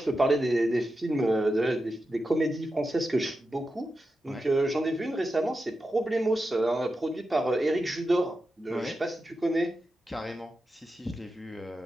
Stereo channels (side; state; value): both; normal; correlation 0.90